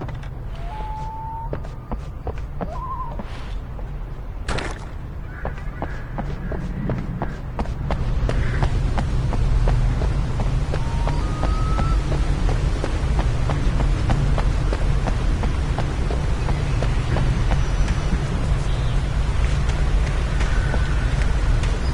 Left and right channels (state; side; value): identical; both; correlation 1.00